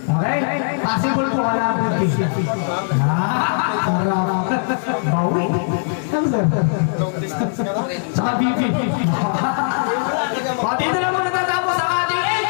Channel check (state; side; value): silent; right; digital silence